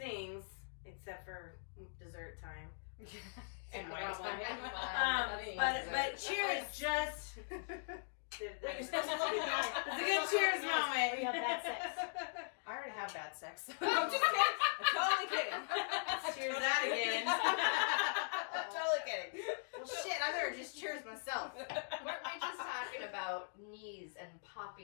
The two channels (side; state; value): right; silent; digital silence